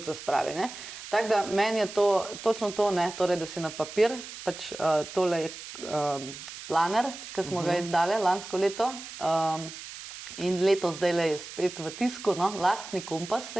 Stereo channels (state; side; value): noise; right; hiss, 12 dB below the sound